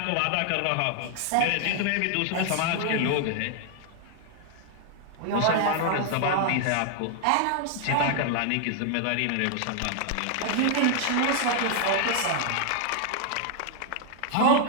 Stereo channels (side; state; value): both; different; correlation 0.00